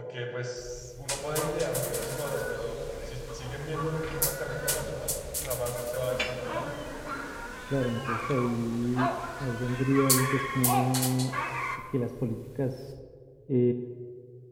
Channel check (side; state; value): both; identical; correlation 1.00